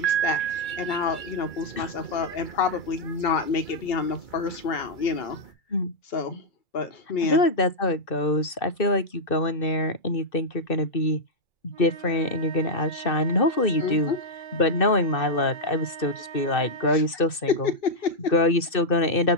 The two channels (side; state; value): right; late; 2.6 ms